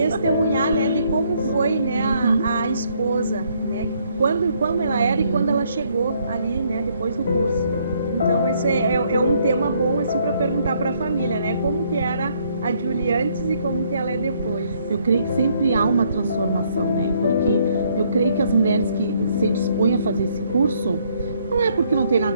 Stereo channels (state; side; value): inverted; both; correlation -0.69